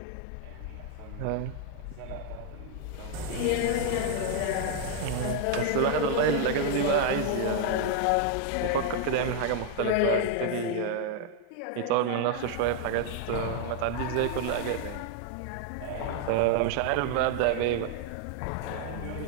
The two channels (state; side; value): different; both; correlation 0.00